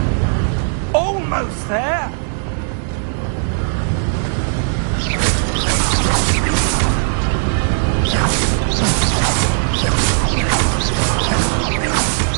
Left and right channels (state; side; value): silent; left; digital silence